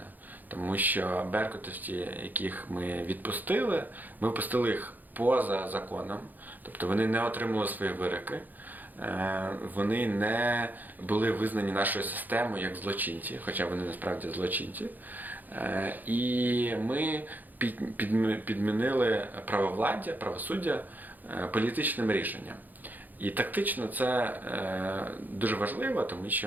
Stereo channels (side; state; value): left; late; 0.085 ms